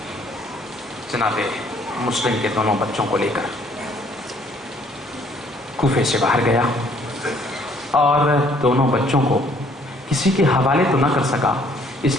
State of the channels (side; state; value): both; normal; correlation 0.62